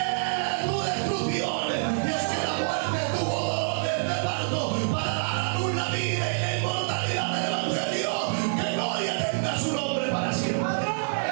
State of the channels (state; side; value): silent; left; digital silence